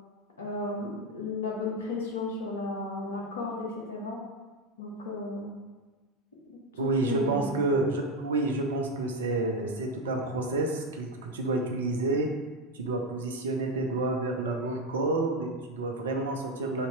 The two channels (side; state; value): both; normal; correlation 0.10